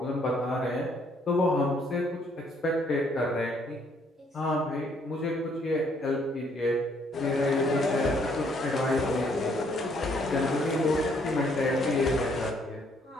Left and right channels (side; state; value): both; normal; correlation 0.67